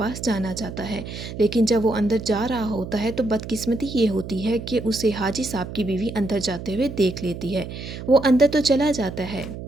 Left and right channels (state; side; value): noise; right; hum, 10 dB below the sound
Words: जाना चाहता है, लेकिन जब वो अंदर जा रहा होता है तो बदकिस्मती ये होती है कि उसे हाजी साहब की बीवी अंदर जाते हुए देख लेती है। वो अंदर तो चला जाता है।